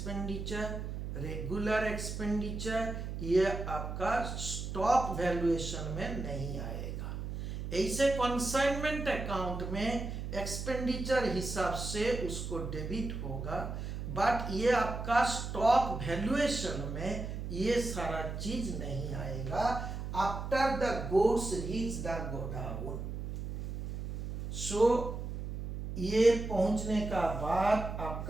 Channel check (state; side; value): noise; right; hum, 6 dB below the sound